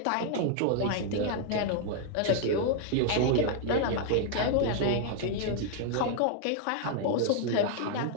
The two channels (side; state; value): both; different; correlation 0.00